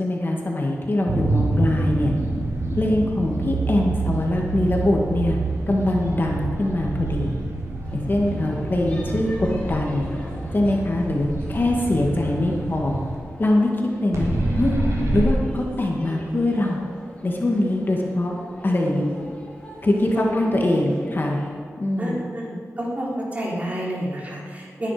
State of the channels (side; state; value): both; normal; correlation 0.92